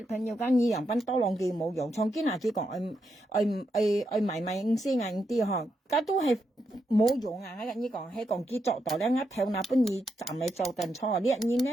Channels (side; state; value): both; normal; correlation 0.82